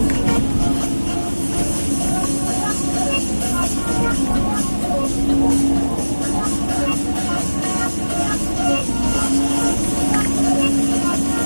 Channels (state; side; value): inverted; both; correlation -1.00